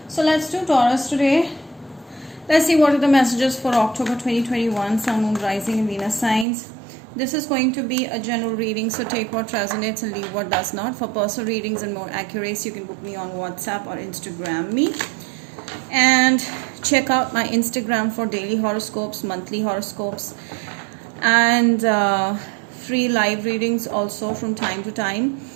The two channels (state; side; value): drops out; left; at 6.5 s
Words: So let's do Taurus today. Let's see what are the messages for October 2021, Sun, Moon, Rising and Venus signs. This is going to be a general reading, so take what resonates and leave what does not. For personal readings and more accuracy, you can book me on WhatsApp or Instagram me. And check out my Instagram for daily horoscopes, monthly horoscopes, and free live readings also from time to time,